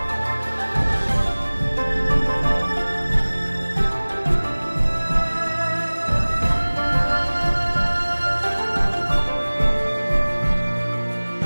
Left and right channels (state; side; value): inverted; both; correlation -1.00